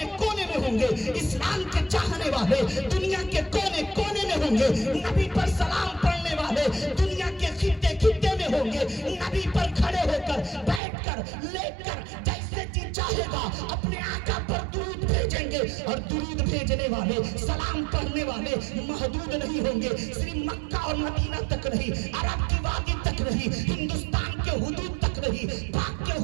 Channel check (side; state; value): left; drops out; at 10.8 s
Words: کونے میں ہوں گے، اسلام کے چاہنے والے دنیا کے کونے کونے میں ہوں گے، نبی پر سلام پڑھنے والے دنیا کے خطے خطے میں ہوں گے. نبی پر کھڑے ہو کر، بیٹھ کر، لیٹ کر، جیسے جی چاہے گا اپنے آقا پر درود بھیجیں گے. اور درود بھیجنے والے، سلام پڑھنے والے محدود نہیں ہوں گے، صرف مکہ اور مدینہ تک نہیں، عرب کی وادی تک نہیں، ہندوستان کے حدود تک نہیں، پاک کے